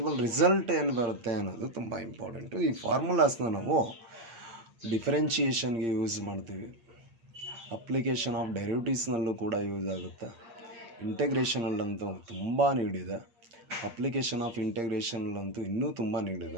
ರಿಸಲ್ಟ್ ಏನು ಬರುತ್ತೆ ಅನ್ನೋದು ತುಂಬ ಇಂಪಾರ್ಟೆಂಟು. ಈ ಫಾರ್ಮುಲಾಸ್ನ ನಾವು ಡಿಫರೆನ್ಷಿಯೇಷನ್ಗೆ ಯೂಸ್ ಮಾಡ್ತೀವಿ, ಅಪ್ಲಿಕೇಶನ್ ಆಫ್ ಡೆರಿವಿಟಿವ್ಸ್ನಲ್ಲೂ ಕೂಡ ಯೂಸ್ ಆಗುತ್ತೆ, ಇಂಟೆಗ್ರೇಷನಲ್ಲಂತೂ ತುಂಬ ನೀಡಿದೆ, ಅಪ್ಲಿಕೇಶನ್ ಆಫ್ ಇಂಟೆಗ್ರೇಷನಲ್ಲಂತೂ ಇನ್ನೂ ತುಂಬ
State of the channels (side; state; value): left; late; 8.7 ms